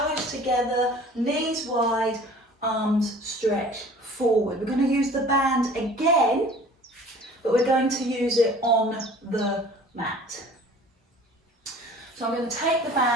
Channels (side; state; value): both; normal; correlation 0.47